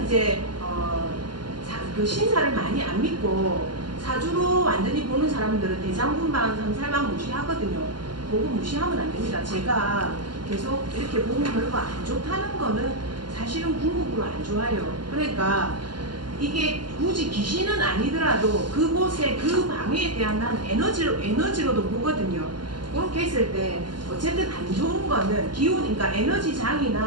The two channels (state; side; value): late; left; 0.71 ms